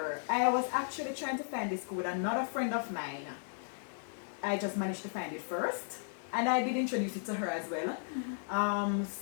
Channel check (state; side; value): silent; right; digital silence